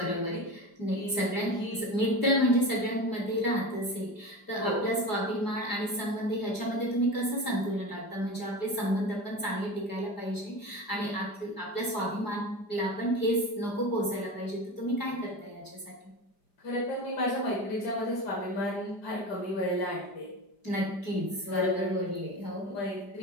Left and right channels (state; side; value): late; right; 5.0 ms